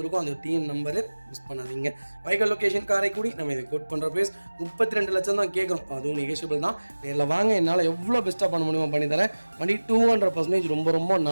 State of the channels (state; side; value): inverted; both; correlation -1.00